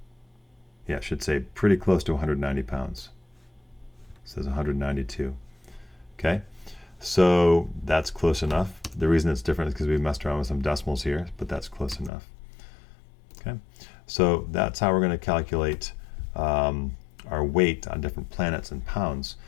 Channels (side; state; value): right; drops out; at 12.1 s